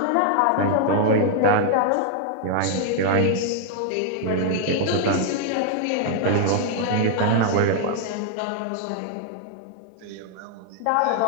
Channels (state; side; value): different; both; correlation 0.00